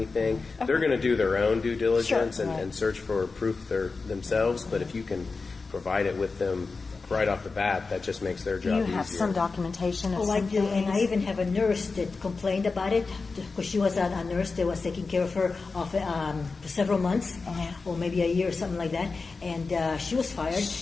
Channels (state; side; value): quieter; right; 4.2 dB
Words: They're going to do their own due diligence and search for proof themselves, but if you can provide it with them right off the bat, that just makes their job easier. You have some documentation of I do, and I even have a nurse that complained about it because she was a nurse that was taking care of her for several months, or maybe a year or something like that, and she was fired,